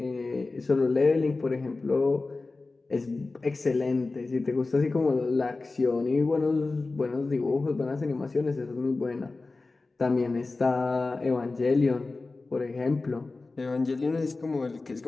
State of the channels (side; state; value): right; quieter; 3.6 dB